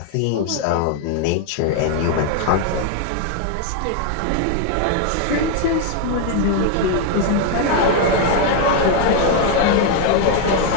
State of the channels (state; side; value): different; both; correlation 0.01